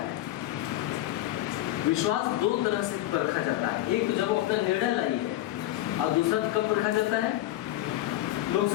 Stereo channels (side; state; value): right; quieter; 14.8 dB